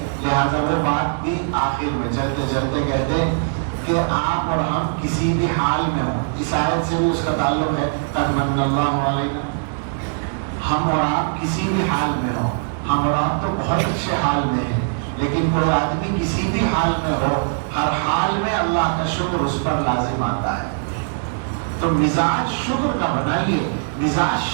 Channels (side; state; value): left; silent; digital silence